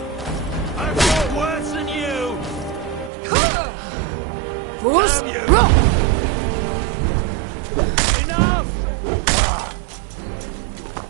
I've got worse than you! Bruce, Damn you! roll! Enough!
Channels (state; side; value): drops out; left; at 3.1 s